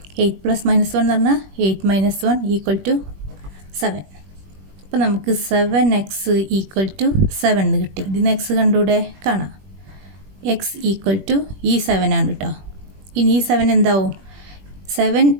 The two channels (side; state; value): left; late; 21 ms